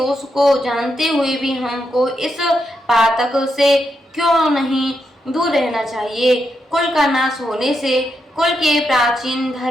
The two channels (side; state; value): both; normal; correlation 0.83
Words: को जानते हुए भी हमको इस पातक से क्यों नहीं दूर रहना चाहिए। कुल का नाश होने से कुल के प्राचीन